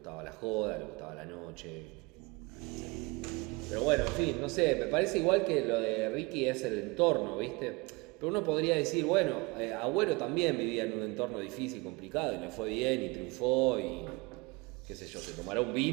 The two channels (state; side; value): quieter; left; 25.7 dB